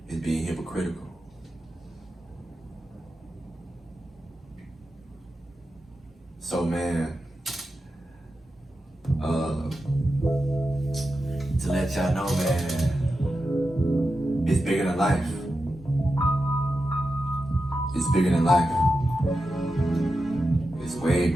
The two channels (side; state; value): both; normal; correlation 0.90